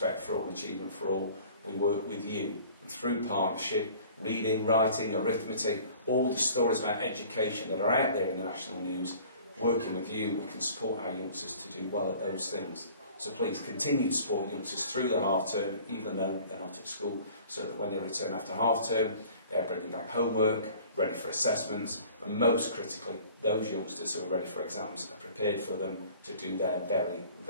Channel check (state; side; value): inverted; both; correlation -0.49